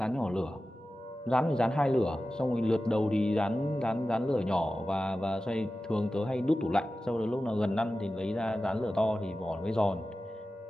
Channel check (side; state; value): both; normal; correlation 0.94